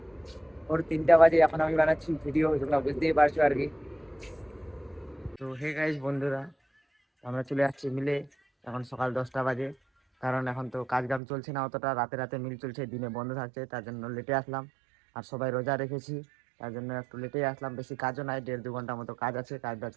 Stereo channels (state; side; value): drops out; left; at 11.2 s